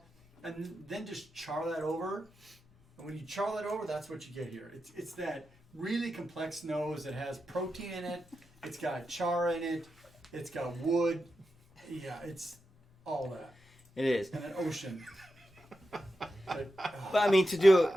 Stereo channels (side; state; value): both; normal; correlation 0.89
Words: and then just char that over. And when you char that over, that's what you get here. It's that really complex nose that has protein in it. It's got char in it. It's got wood. Yeah, it's all that. It is. And an ocean. But, But I mean, to